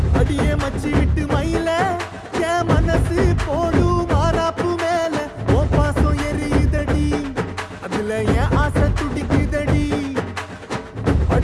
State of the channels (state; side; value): identical; both; correlation 1.00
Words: அடியே மச்சி விட்டு மயில என் மனசு போடு மாறாப்பு மேல ஓ பாசம் எரியுதடி அதுல என் ஆசை துடிக்குதடி